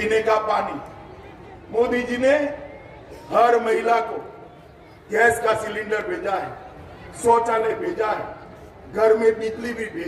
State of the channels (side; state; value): both; identical; correlation 1.00